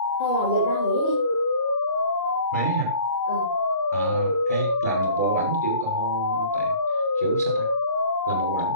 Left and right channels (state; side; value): inverted; both; correlation -0.50